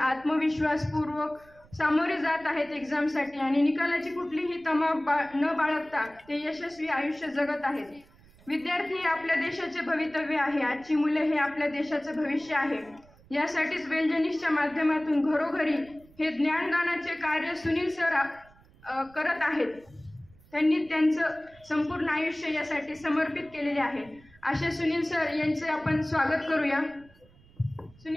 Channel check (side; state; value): right; noise; rumble, 26 dB below the sound